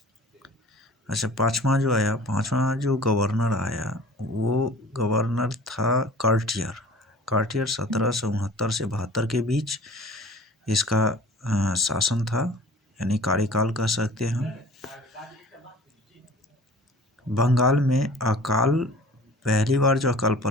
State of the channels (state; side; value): normal; both; correlation 0.45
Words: अच्छा, पांचवा जो गवर्नर आया वो गवर्नर था कार्टियर 1769 से 72 के बीच इसका शासन था, यानी कार्यकाल कह सकते हैं। बंगाल में पहली बार जो अकाल